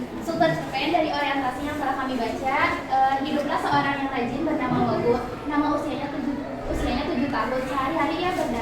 Struktur cerpen dari orientasi yang telah kami baca. Hiduplah seorang yang rajin bernama Wagu. Nama usianya 7 tahun. Sehari-hari ia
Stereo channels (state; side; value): identical; both; correlation 1.00